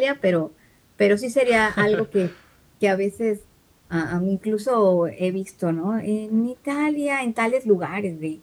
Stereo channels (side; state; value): both; identical; correlation 1.00